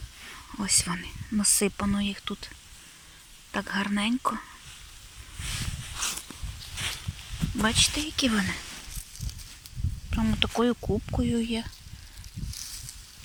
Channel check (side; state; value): both; identical; correlation 1.00